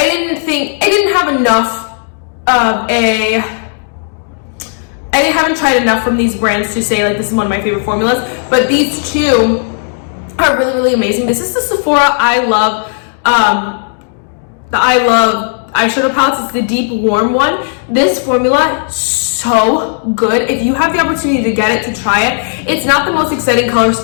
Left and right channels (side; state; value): right; silent; digital silence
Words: haven't tried enough from these brands to say like this is one of my favorite formulas, but these two are really, really amazing. This is the Sephora I Love eyeshadow palettes. It's the deep warm one. This formula, so good. If you have the opportunity to get it, to try it. It's not the most exciting color